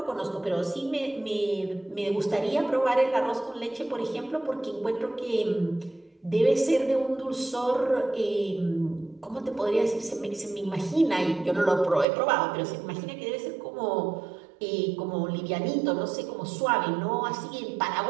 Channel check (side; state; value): left; drops out; at 12.1 s